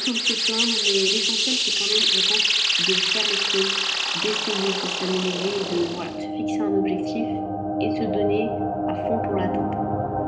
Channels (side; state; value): both; identical; correlation 1.00